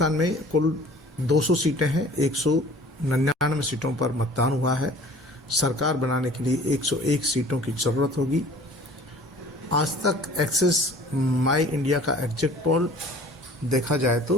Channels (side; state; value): both; normal; correlation 0.48